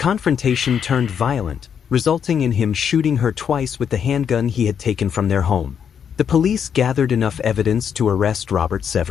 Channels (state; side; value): quieter; right; 7.8 dB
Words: turned violent, resulting in him shooting her twice with the handgun he had taken from their home. The police gathered enough evidence to arrest Robert